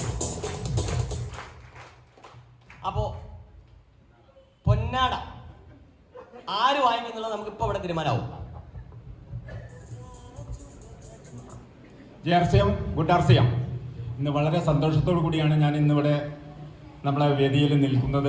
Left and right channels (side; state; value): both; identical; correlation 1.00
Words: അപ്പോ പൊന്നാട ആര് വാങ്ങിക്കുന്നുള്ളത് നമുക്ക് ഇപ്പൊ ഇവിടെ തീരുമാനമാവും. JRCM, good RCM. ഇന്ന് വളരെ സന്തോഷത്തോടു കൂടിയാണ് ഞാൻ ഇന്നിവിടെ നമ്മളെ വേദിയിൽ